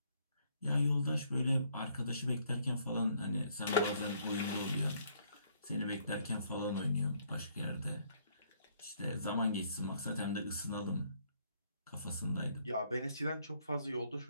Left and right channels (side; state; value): both; inverted; correlation -0.67